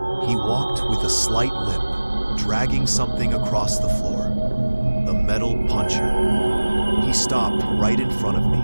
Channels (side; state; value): both; inverted; correlation -1.00